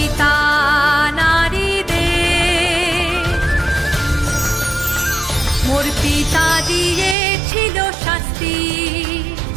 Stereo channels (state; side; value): drops out; left; at 7.2 s